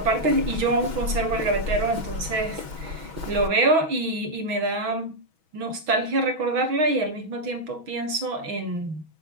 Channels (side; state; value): left; late; 6.2 ms